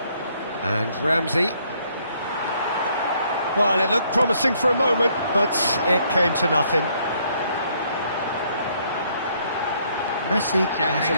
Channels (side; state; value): both; inverted; correlation -0.67